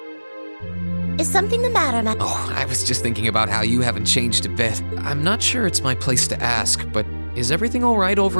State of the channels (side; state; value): both; inverted; correlation -1.00